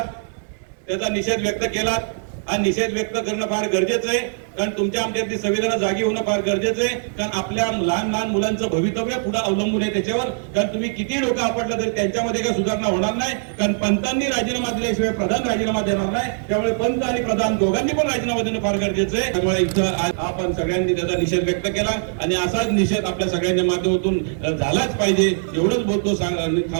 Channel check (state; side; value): silent; left; 64 dB below the other